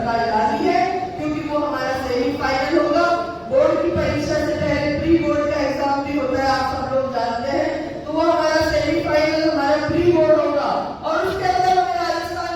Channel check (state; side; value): identical; both; correlation 1.00